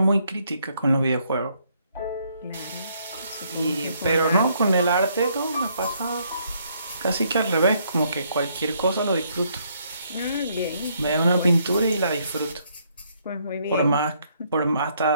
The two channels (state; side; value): inverted; both; correlation -0.70